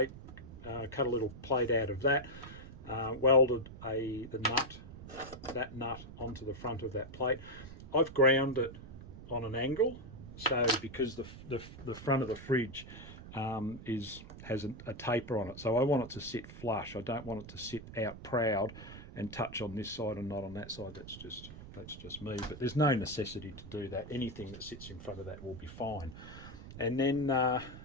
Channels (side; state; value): right; noise; rumble, 14 dB below the sound